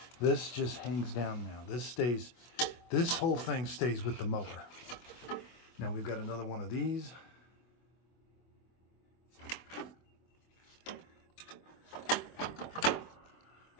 This just hangs down now. This whole thing stays with the mower. Now we've got another one of these.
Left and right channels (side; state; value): right; late; 24 ms